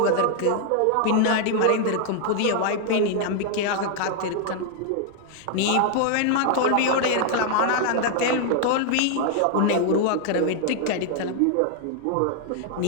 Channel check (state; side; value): different; both; correlation 0.00